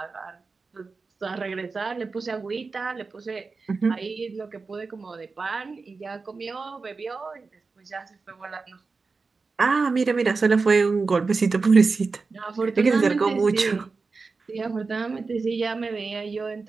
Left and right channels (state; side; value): quieter; left; 4.3 dB